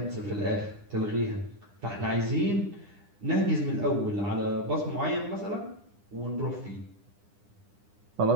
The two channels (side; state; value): left; late; 9.9 ms